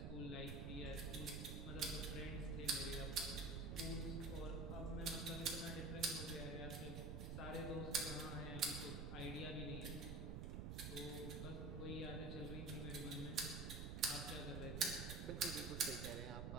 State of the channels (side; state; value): right; noise; rumble, 4 dB below the sound